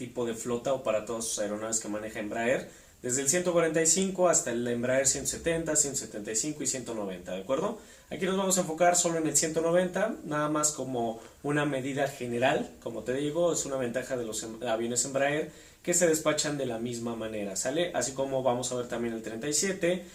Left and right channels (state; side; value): identical; both; correlation 1.00